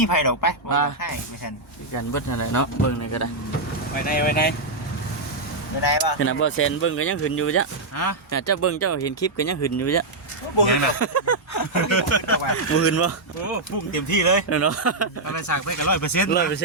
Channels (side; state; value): left; quieter; 3.1 dB